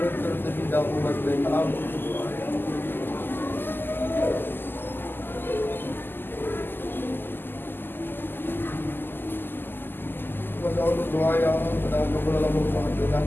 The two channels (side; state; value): right; late; 0.096 ms